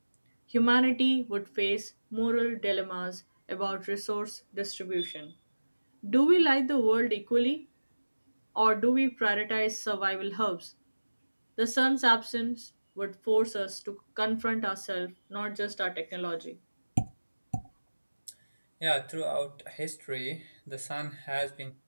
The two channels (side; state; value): both; inverted; correlation -1.00